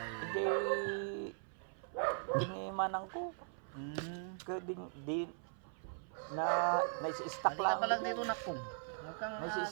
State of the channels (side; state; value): left; silent; 51 dB below the other